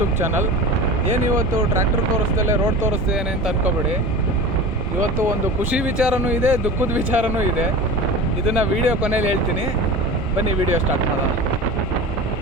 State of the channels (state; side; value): normal; both; correlation 0.32